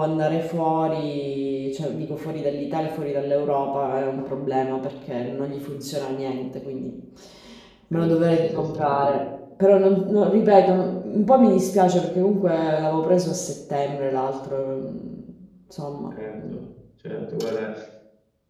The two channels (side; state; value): both; identical; correlation 1.00